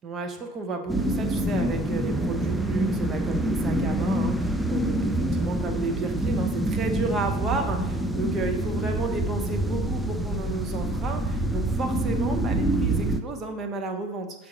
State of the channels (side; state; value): both; normal; correlation 0.57